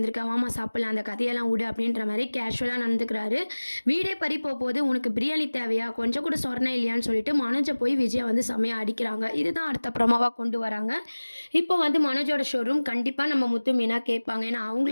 வாமா சாப்பிடலாம், அந்த கதையெல்லாம் விடு அப்படின்ற மாதிரி கேஷுவலாக நடந்துக்கிறாரு. வீடே பறி போகுது, உனக்கு பிரியாணி தேவையா, கொஞ்சம் கூட சொரணை இல்லையான்னு சொல்லிட்டு மனோஜை போய் விஜயா வந்து செம்மையாக அடிக்கிறாங்க. இதுதான் அடுத்தப்புறமாவாக கொண்டு வராங்க. இப்போ வந்து மனோஜோட ஷோரூம் கண்டிப்பாக நம்ம முத்து மீனா கேட்பாங்க. ஏன்னா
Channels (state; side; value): inverted; both; correlation -1.00